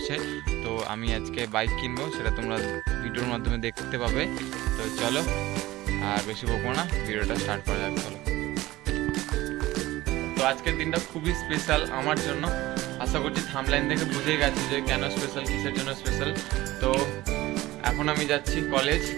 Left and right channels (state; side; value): quieter; left; 17.5 dB